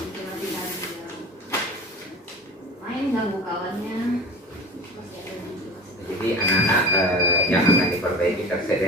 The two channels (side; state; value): both; normal; correlation 0.36